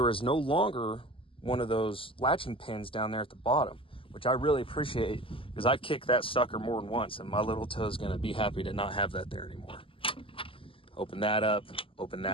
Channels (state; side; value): late; right; 0.26 ms